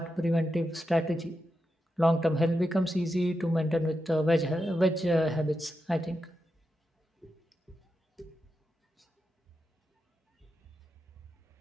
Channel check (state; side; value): normal; both; correlation 0.87